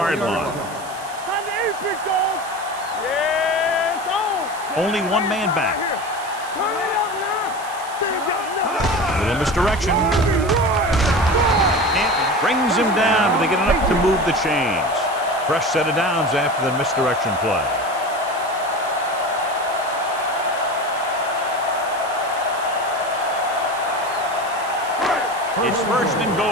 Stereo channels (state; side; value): noise; right; hiss, 17 dB below the sound